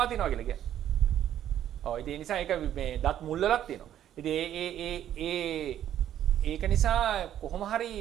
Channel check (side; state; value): left; quieter; 11.1 dB